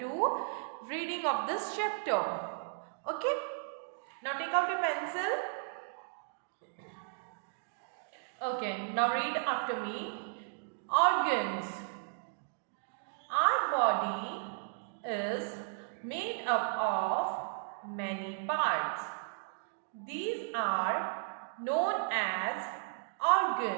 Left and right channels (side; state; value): left; silent; digital silence